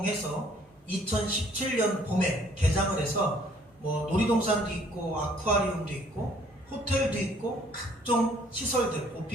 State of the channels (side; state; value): both; normal; correlation 0.60